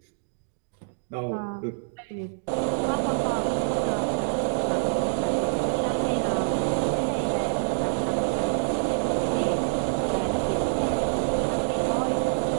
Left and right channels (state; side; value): silent; left; digital silence